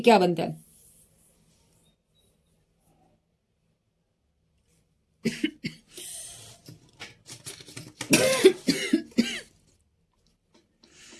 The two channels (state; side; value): identical; both; correlation 1.00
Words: क्या बनता है।